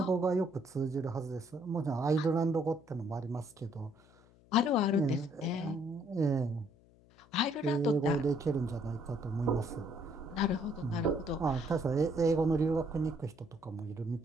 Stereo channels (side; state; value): left; noise; hum, 28 dB below the sound